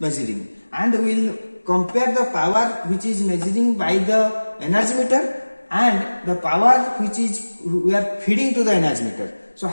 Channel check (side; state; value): both; inverted; correlation -1.00